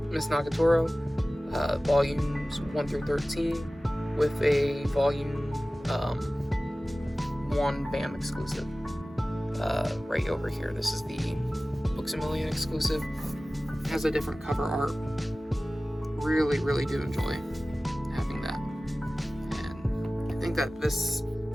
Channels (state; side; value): normal; both; correlation 0.97